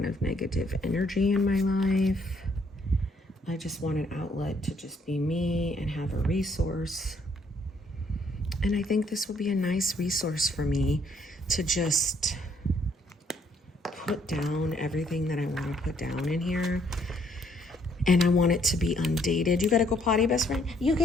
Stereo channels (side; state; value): both; normal; correlation 0.67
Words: of negative energy in my life. I just want an outlet to just be me and have a resource. And I think this will be a nice resource for me to just put down everything that I want to put down in here. And I want it to be undated. You gotta go potty, best friend? You